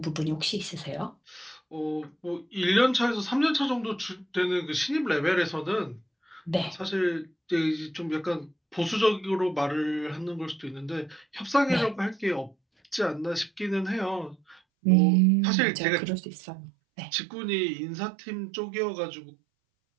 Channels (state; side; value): drops out; left; at 14.6 s